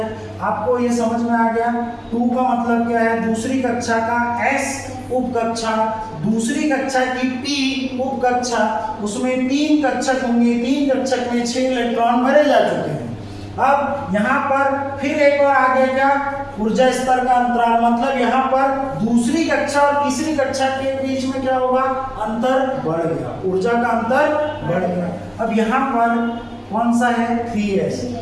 आपको ये समझ में आ गया? 2 का मतलब क्या है? दूसरी कक्षा का S उपकक्षा, दूसरी कक्षा की P उपकक्षा, उसमें 3 कक्षक होंगे। 3 कक्षक में 6 इलेक्ट्रॉन भरे जा चुके हैं। अब यहाँ पर फिर एक और आगे क्या? ऊर्जा स्तर का अंतराल, मतलब यहाँ पर दूसरी कक्षा और तीसरी कक्षा के बीच में क्या होगा? अंतर बढ़ गया। ऊर्जा का अंतर बढ़ गया। अब यहाँ पर कौन सा है? 3s।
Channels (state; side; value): identical; both; correlation 1.00